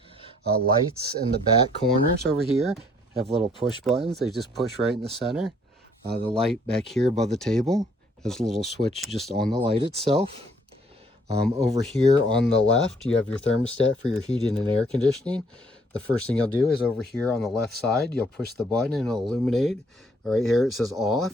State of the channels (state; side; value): normal; both; correlation 0.63